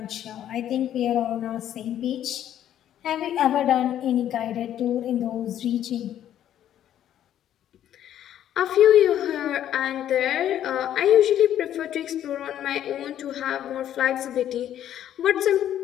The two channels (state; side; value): quieter; right; 11.1 dB